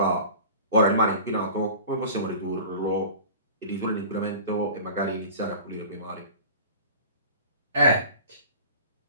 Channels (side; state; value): both; inverted; correlation -0.39